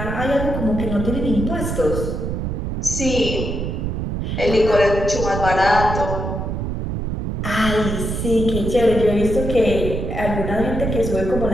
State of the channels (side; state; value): right; noise; rumble, 3 dB below the sound